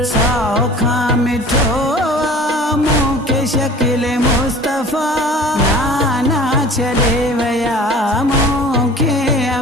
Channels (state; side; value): normal; both; correlation 0.44